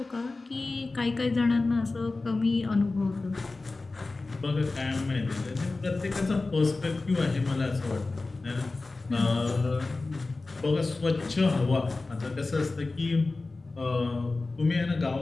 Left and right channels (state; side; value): quieter; right; 3.5 dB